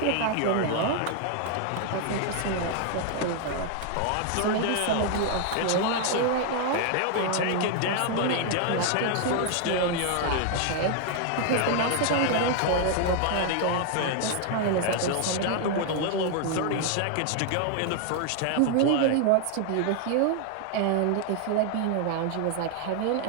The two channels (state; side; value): different; both; correlation 0.00